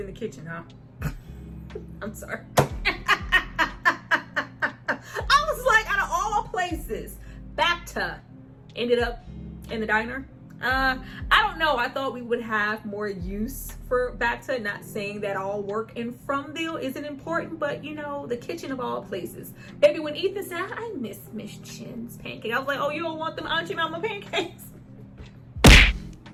the kitchen, huh? I'm sorry. Places, Bacta ended up in the diner. I don't know. I thought we would have more use for Bacta. Not saying that all work in Fromville isn't important, but you know, the kitchen of all places. Baby, when Ethan said, I miss Miss Chen's pancake, I was like, oh, you don't want them Auntie Mama pancakes?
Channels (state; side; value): identical; both; correlation 1.00